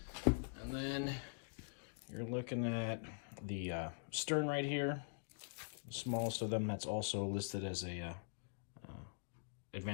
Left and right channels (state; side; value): silent; right; digital silence